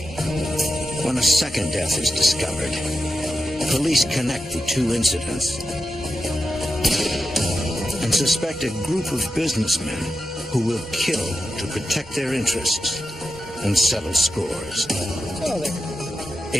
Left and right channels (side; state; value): both; normal; correlation 0.90